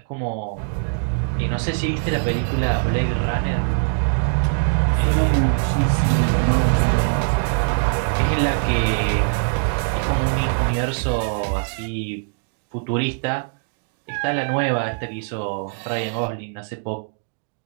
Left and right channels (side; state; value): left; silent; digital silence